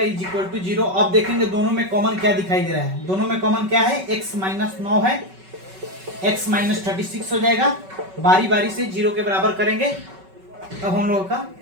इज इक्वल टू 0। अब देखेंगे दोनों में कॉमन क्या दिखाई दे रहा है। दोनों में कॉमन क्या है, x माइनस 9 है, x माइनस 36 हो जाएगा। बारी बारी से 0 के बराबर करेंगे, तब हम लोगों का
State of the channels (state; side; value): late; left; 5.3 ms